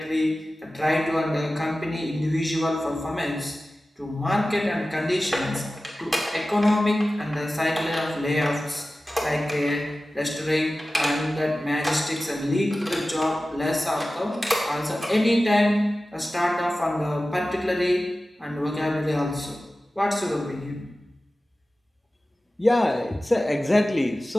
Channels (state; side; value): normal; both; correlation 0.96